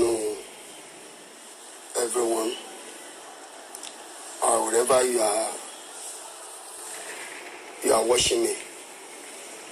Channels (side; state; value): both; identical; correlation 1.00